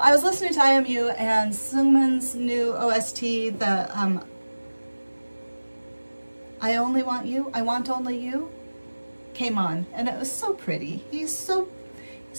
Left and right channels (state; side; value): inverted; both; correlation -1.00